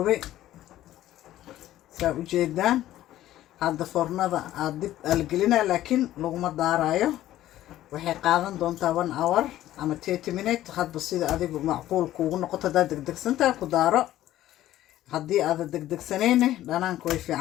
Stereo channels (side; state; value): right; quieter; 13.8 dB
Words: saa ujeedaan hadda foornada aad dib algelinaa laakiin laguma daarayo waxay qaadan doontaa 1 hour ama 30 minutes hadba sida adigu macquul kuugu noqoto hadaa degdegsantaa ku daaro haddii aad degdegsanayne dhanaanku way